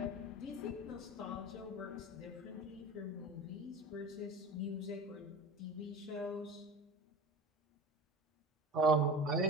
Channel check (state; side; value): normal; both; correlation 0.33